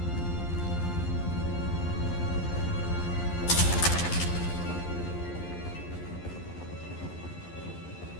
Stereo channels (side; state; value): right; late; 11 ms